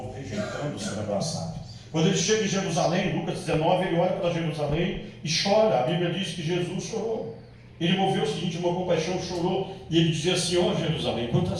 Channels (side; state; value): both; identical; correlation 1.00